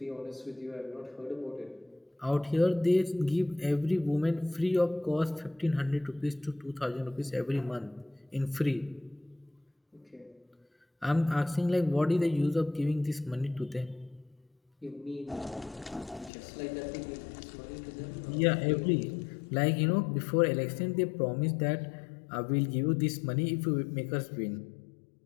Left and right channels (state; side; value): drops out; right; at 16.3 s